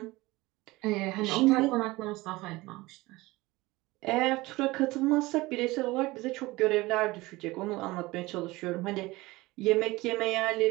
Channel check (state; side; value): quieter; left; 20.7 dB